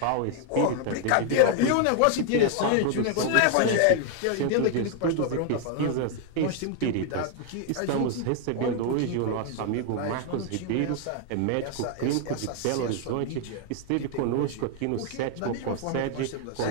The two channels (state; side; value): different; both; correlation 0.00